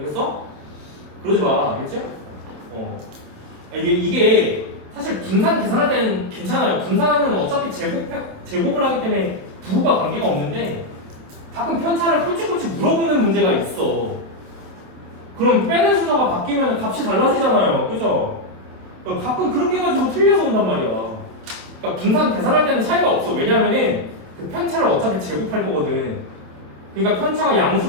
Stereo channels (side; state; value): left; late; 27 ms